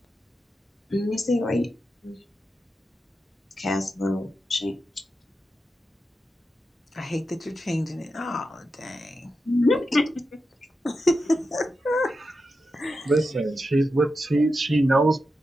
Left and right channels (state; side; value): normal; both; correlation 0.89